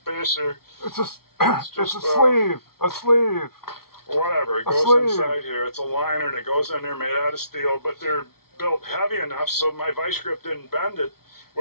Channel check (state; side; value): late; right; 0.94 ms